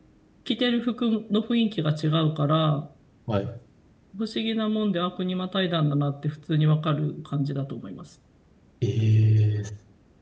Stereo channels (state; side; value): identical; both; correlation 1.00